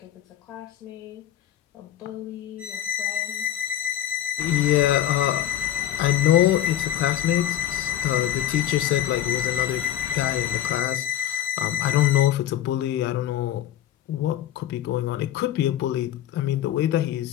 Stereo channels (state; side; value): quieter; right; 11.9 dB